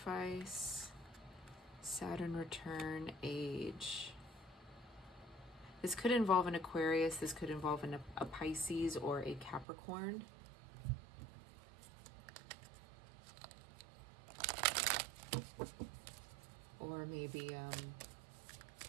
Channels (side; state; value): left; drops out; at 9.7 s